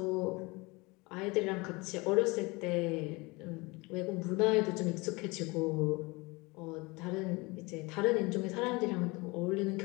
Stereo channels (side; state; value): right; quieter; 25.0 dB